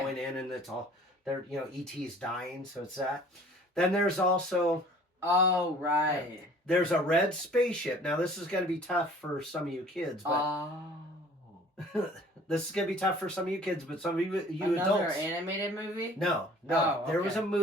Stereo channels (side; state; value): both; normal; correlation 0.51